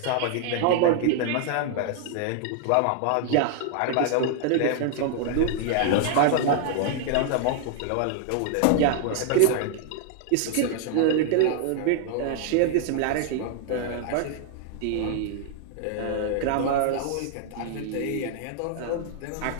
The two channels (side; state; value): both; different; correlation 0.00